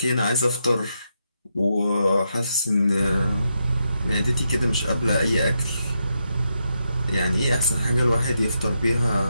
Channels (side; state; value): both; inverted; correlation -0.83